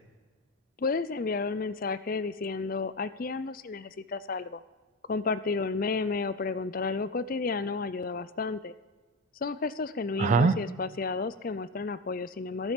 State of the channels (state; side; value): normal; both; correlation 0.21